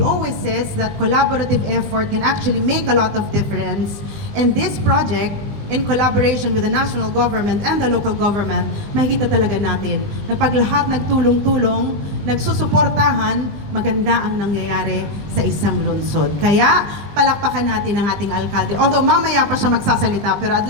always says that collaborative effort can actually make a lot of difference. And this project, in collaboration with the national government and the local government, makikita talaga natin na pag lahat nagtulong-tulong, nagsusuportahan, maganda ang nangyayari sa isang lungsod. Kaya, palakpakan natin ang ating alkalde. Although mamaya pa siya magsasalita, pero I'd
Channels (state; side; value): late; left; 20 ms